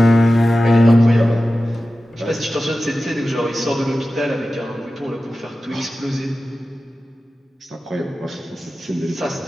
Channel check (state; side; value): normal; both; correlation 0.94